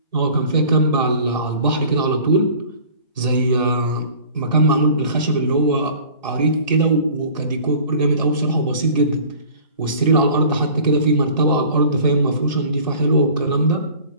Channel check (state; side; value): inverted; both; correlation -0.46